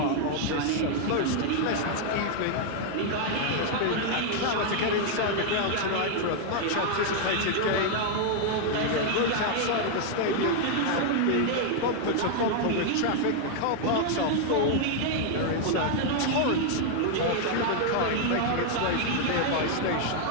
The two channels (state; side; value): different; both; correlation 0.00